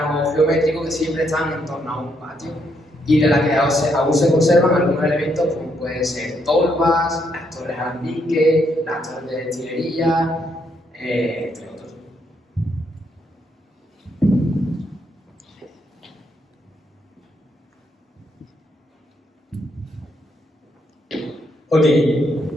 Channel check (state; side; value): normal; both; correlation 0.75